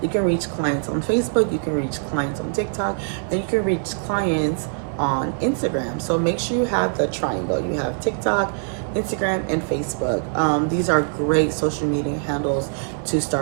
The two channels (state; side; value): silent; left; digital silence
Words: You can reach clients on Facebook, you can reach clients on TikTok, and you can reach clients on Instagram. So make sure you have the triangle. You have TikTok, Instagram, and Facebook. These are great social media handles to